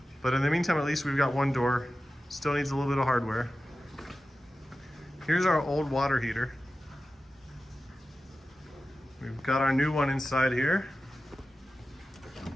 But in the meantime, at least we've got one door. Still needs a little bit of hardware. Here's our old water heater. We've got our new one inside here.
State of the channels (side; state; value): both; normal; correlation 0.94